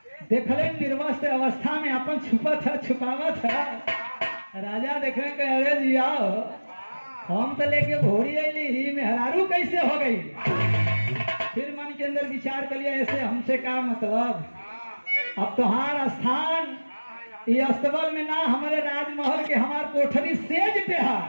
देखले निर्वस्त्र अवस्था में अपन छुपावत है। राजा देख रहे हैं, अरे जी आओ, हम तो लेके घोड़ी अली ही मेहरारू कैसे हो गई। फिर मन के अंदर विचार कर लिया, ऐसे हमसे क्या मतलब, अब तुम्हारा स्थान ये अस्तबल में ना, हमारे राजमहल के हमार कोठरी सेज पे है।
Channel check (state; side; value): inverted; both; correlation -1.00